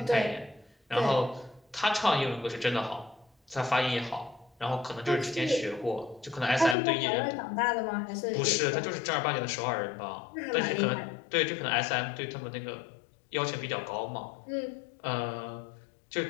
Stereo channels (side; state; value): right; drops out; at 6.8 s